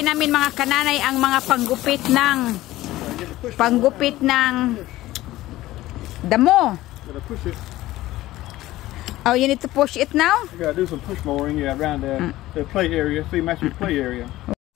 namin mga kananay ang mga panggupit ng damo. Gotta push it. Oh, you need to push it now? You gotta do some push mowing, around the play area. See, match your play area.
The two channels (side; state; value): right; quieter; 16.4 dB